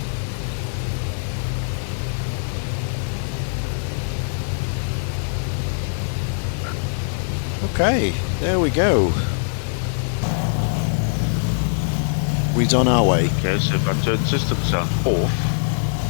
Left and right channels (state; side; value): silent; right; digital silence